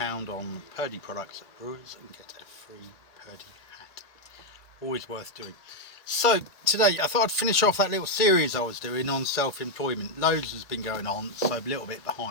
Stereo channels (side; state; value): right; late; 2.0 ms